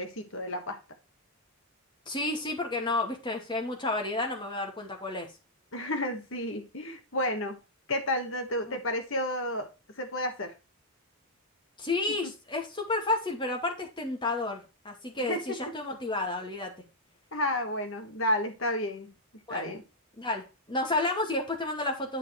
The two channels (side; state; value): both; normal; correlation -0.09